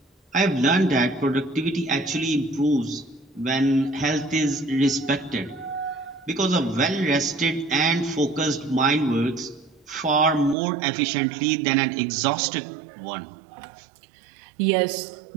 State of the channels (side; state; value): left; drops out; at 10.6 s